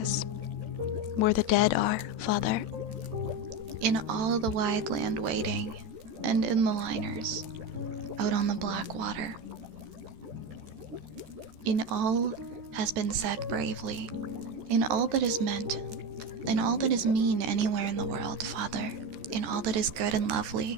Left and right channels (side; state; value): left; late; 14 ms